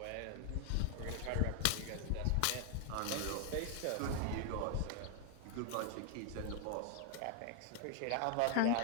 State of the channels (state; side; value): different; both; correlation 0.00